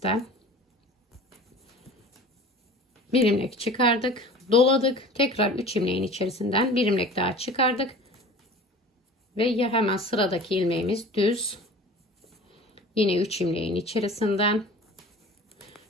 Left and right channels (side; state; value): both; normal; correlation 0.41